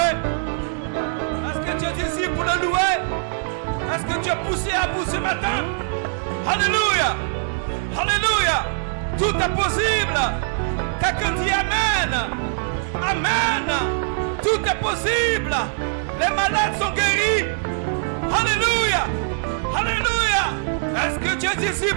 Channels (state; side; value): silent; left; 64 dB below the other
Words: Est-ce que tu es ici pour le louer? Est-ce que tu es poussé à bout ce matin? Alléluia! Alléluia! Tout est possible. Quelqu'un dit Amen. Amen. Tout est possible. Les malades sont guéris. Alléluia. Alléluia. Est-ce que tu es ici